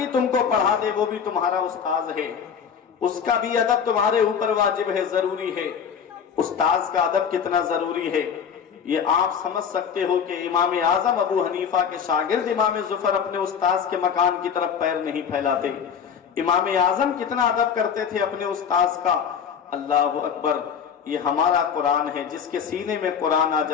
تم کو پڑھا دے وہ بھی تمہارا استاذ ہے, اس کا بھی ادب تمہارے اوپر واجب ہے, ضروری ہے. استاذ کا ادب کتنا ضروری ہے یہ آپ سمجھ سکتے ہو کہ امام اعظم ابو حنیفہ کے شاگرد امام ظفر اپنے استاذ کے مکان کی طرف پیر نہیں پھیلاتے. امام اعظم کتنا ادب کرتے تھے اپنے استاذ کا. اللہ اکبر. یہ ہمارا قرآن ہے, جس کے سینے میں قرآن آ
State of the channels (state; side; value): quieter; right; 7.2 dB